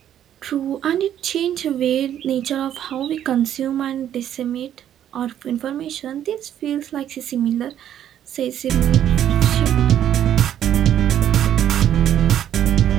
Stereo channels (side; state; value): left; quieter; 10.6 dB